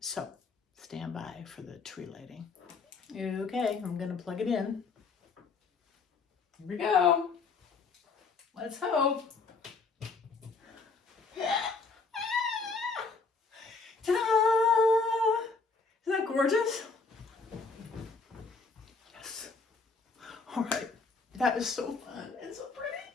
so stand by for the tree lighting. Okay, I'm gonna plug it in. Here we go. Let's hope. Ta-da! Isn't that gorgeous? Yes. All right. That is so fun and so pretty.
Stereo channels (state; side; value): quieter; right; 4.4 dB